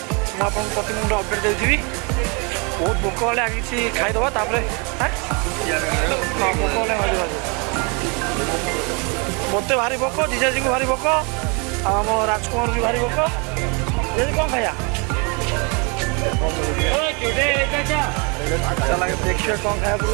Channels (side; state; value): left; quieter; 32.4 dB